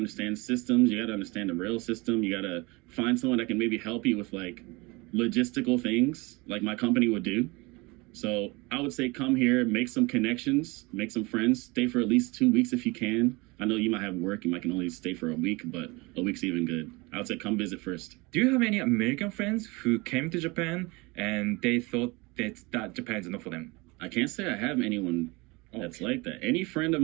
systems, you gotta understand the rail system, you gotta find someone that can maybe help you with like logistical things like my company would do. So I would say come here, make some connections, make some friends, stay for at least 2 weeks if you can, I know you might have work, you might can only stay for a week, but a week's even good. I would say come visit first. Do you have any American friends who came to Japan and they thought that Japan is not for them? I can't say I have anyone that's like that. Any friend of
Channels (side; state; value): left; quieter; 25.2 dB